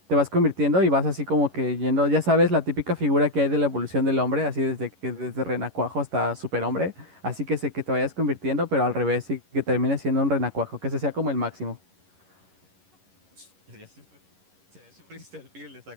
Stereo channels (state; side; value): late; left; 11 ms